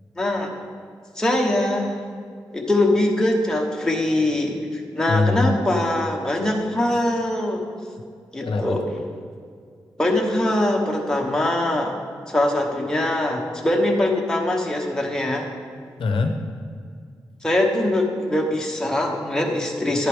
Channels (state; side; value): normal; both; correlation 0.85